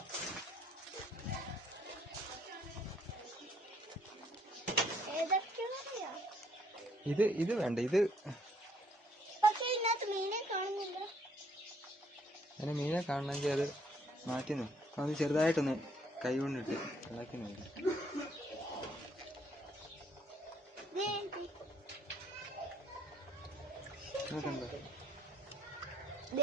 ഇത് വേണ്ട. ഇത് അതിന് മീനെ കാണണമെങ്കിൽ അത് മാറ്റി അത് ചെറുതായിട്ടൊന്ന് കൈ കൊണ്ടിട്ട് ഇളക്കി നോക്കി.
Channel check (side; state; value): both; normal; correlation 0.67